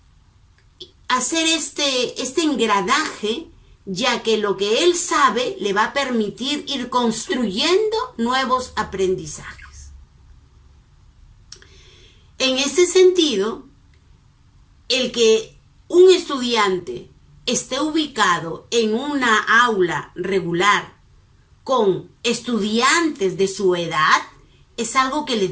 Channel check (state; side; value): identical; both; correlation 1.00